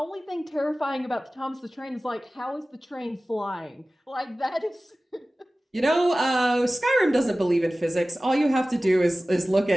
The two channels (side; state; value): both; normal; correlation 0.97